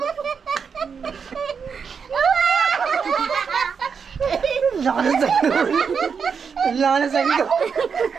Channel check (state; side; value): quieter; left; 6.2 dB